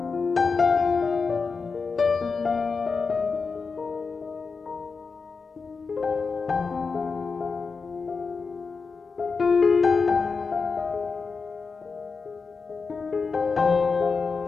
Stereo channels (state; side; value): quieter; right; 4.8 dB